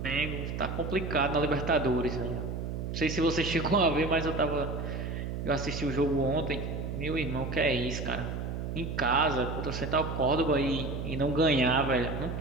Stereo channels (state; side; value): noise; right; hum, 4 dB below the sound